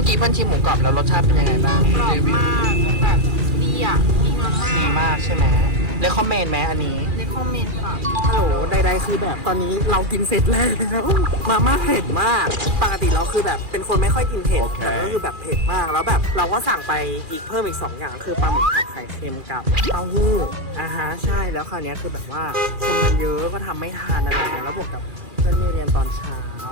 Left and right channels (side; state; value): left; late; 2.4 ms